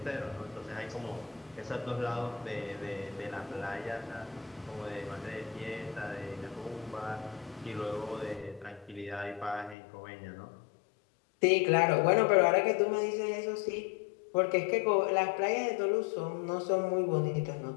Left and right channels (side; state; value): right; drops out; at 9.8 s